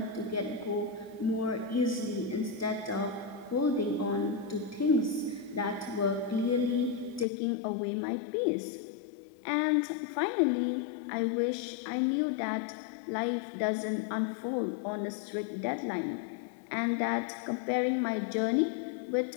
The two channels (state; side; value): drops out; right; at 7.2 s